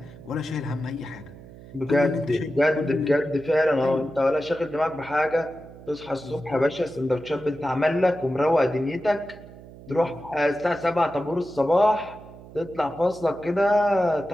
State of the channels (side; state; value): right; noise; hum, 18 dB below the sound